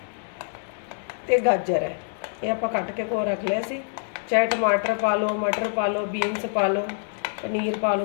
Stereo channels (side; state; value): right; silent; digital silence